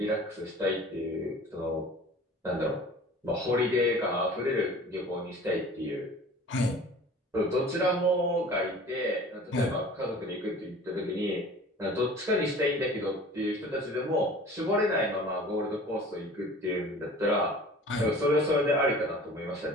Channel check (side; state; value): both; normal; correlation 0.44